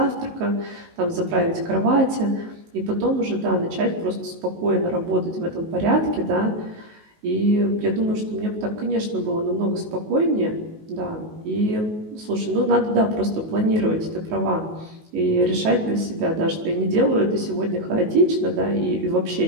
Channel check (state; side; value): late; left; 19 ms